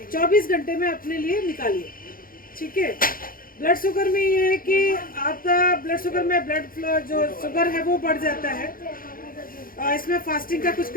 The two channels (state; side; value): late; right; 0.41 ms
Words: 24 घंटे में अपने लिए निकालिए, ठीक है। ब्लड शुगर में ये है कि आपका ब्लड शुगर में ब्लड फ्लो जो शुगर है वो बढ़ जाता है। इसमें फास्टिंग का कुछ